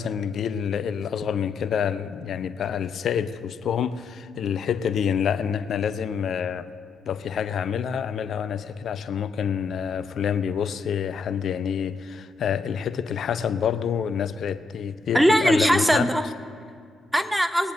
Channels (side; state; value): right; quieter; 3.9 dB